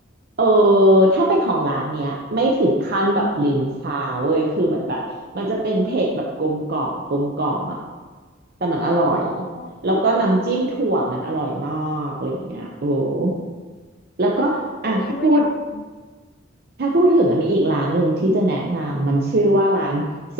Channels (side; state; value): both; normal; correlation 0.32